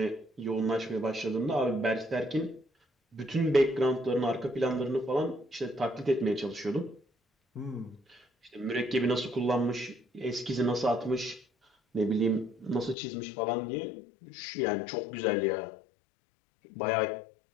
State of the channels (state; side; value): drops out; right; at 13.0 s